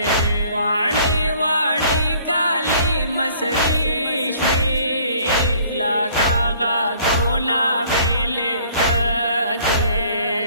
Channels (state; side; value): inverted; both; correlation -0.57